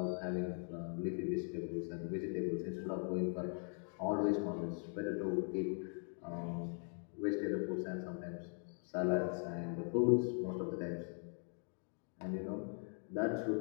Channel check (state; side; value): silent; right; 51 dB below the other